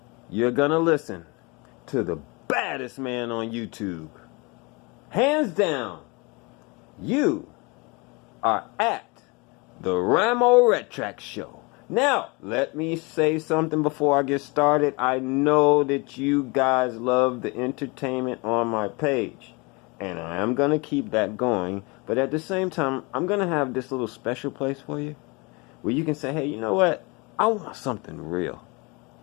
You're gonna listen to the baddest man on YouTube. Hands down, you are at the RAMO RETRAC show. Now, let me say something before I get started. I know that you guys love the entertainment on my page, and I am going to keep that going. But at the same time, I'm going to have this little special place for you where you can say, hey, you know what? I want something real.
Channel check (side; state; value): right; quieter; 27.9 dB